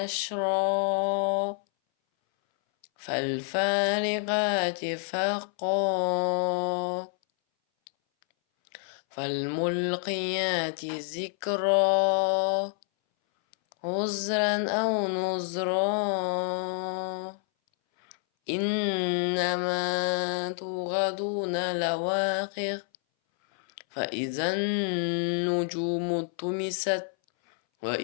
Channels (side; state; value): right; silent; 59 dB below the other